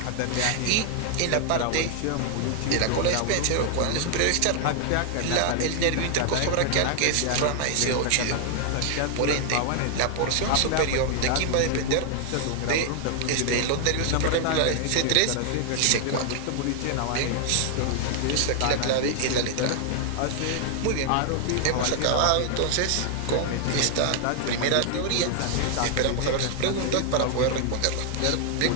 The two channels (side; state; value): both; different; correlation 0.00